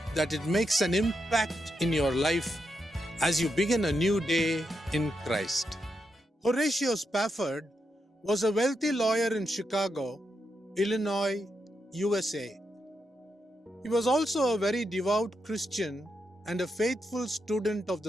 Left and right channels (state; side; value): normal; both; correlation 0.84